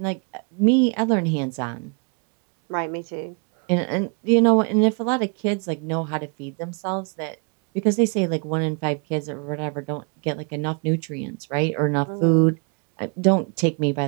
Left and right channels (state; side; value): quieter; left; 36.5 dB